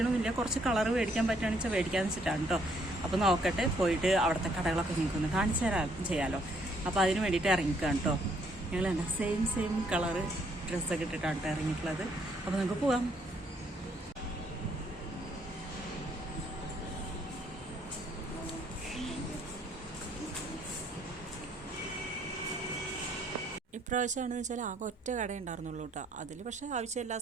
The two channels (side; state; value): both; normal; correlation 0.68